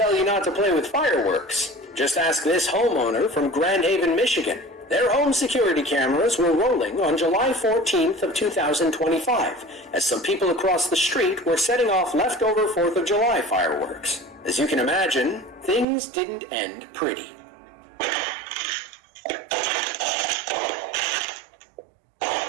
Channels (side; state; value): left; drops out; at 15.9 s